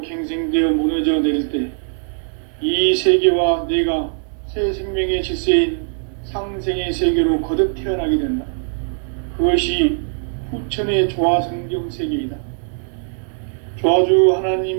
갱생되어 무너져 내릴 때 이 세계와 내가 새 생명의 질서인 상생의 세계로 거듭 태어나게 된다. 그것이 후천의 조화성경 세계이다. 조화주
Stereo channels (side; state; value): left; silent; 66 dB below the other